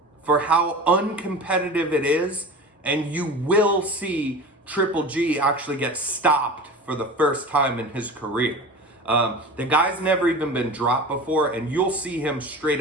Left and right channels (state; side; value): normal; both; correlation 0.34